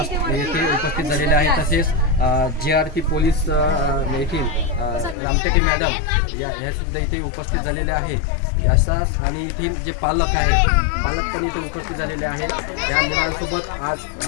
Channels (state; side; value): drops out; right; at 5.2 s